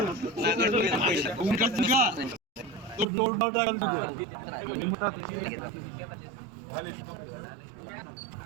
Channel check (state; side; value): drops out; left; at 3.1 s